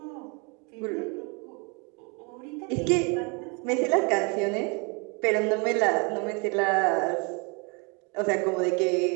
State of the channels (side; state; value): left; quieter; 31.5 dB